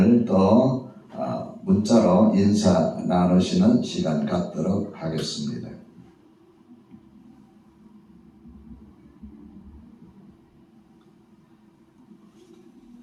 또 문자로 인사 나누시는 시간 갖도록 하겠습니다.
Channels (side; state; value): both; identical; correlation 1.00